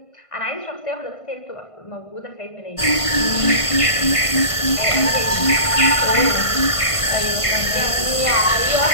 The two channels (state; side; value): late; right; 1.5 ms